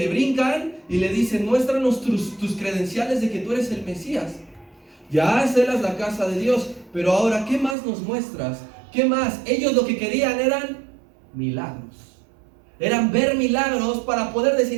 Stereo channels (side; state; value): left; drops out; at 7.8 s